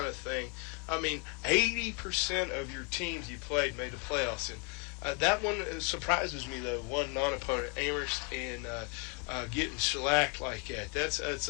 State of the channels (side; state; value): right; quieter; 31.4 dB